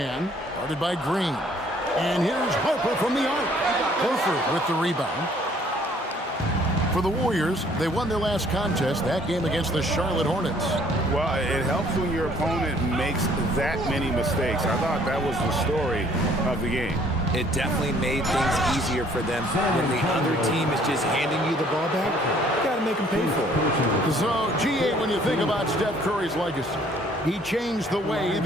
guarded by Green. And here's Harper from the arc. Horford with the rebound. For the Warriors, they won their last contest, that game against the Charlotte Hornets. Well, it helps when your opponent makes that many mistakes. I thought that was the story of the game. It definitely made things easier for them. When the other team is just handing you the ball back, you got to make them pay for it. So, G8, when you think about Steph Curry's legacy, he changed the way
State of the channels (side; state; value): both; normal; correlation 0.60